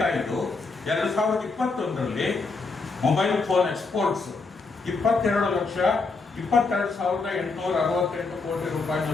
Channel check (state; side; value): quieter; right; 4.0 dB